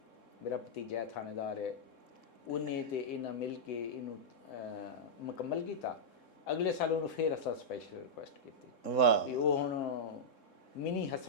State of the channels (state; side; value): late; right; 3.7 ms